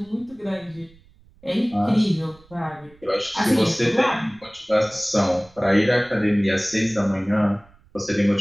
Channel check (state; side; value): noise; right; rumble, 28 dB below the sound